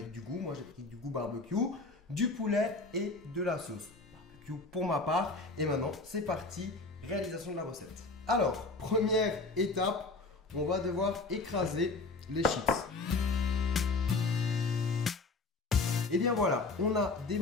du goût, moi j'ai pris du goût barbecue, du poulet et de la sauce barbecue pour ma part. Et maintenant c'est parti, réalisation de la recette. Alors, première étape, on va devoir écraser les chips. Et bien voilà, on a des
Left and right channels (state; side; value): quieter; right; 3.5 dB